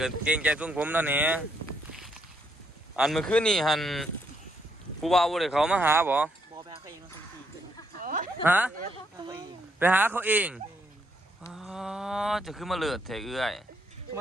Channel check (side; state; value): both; normal; correlation 0.74